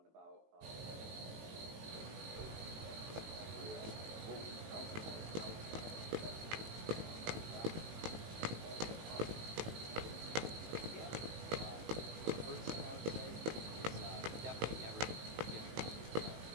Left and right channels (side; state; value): left; late; 19 ms